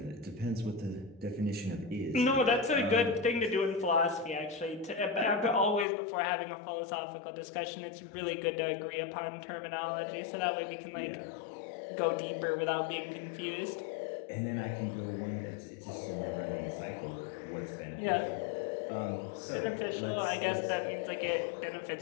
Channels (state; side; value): drops out; right; at 5.9 s